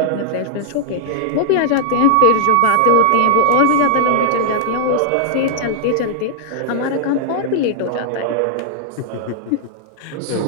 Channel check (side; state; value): both; different; correlation -0.01